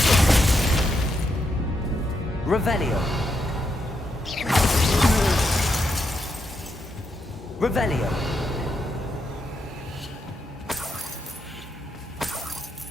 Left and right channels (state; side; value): normal; both; correlation 0.81